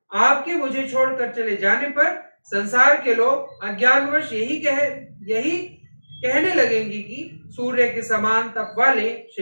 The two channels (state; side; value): inverted; both; correlation -1.00